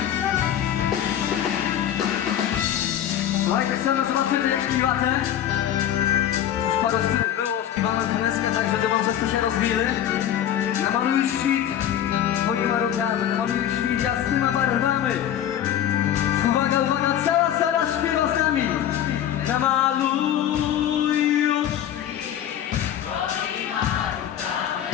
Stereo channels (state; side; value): quieter; right; 10.6 dB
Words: Słuchajcie, chcemy zobaczyć jak śpiewacie. Już parę stylów było, śpiewamy teneskę, także demonstracje się rozwili. Namaluj świt twoimi rękami, namaluj świt jasnymi barwami. Uwaga, uwaga, cała sala śpiewa z nami. Namaluj świt twoimi rękami.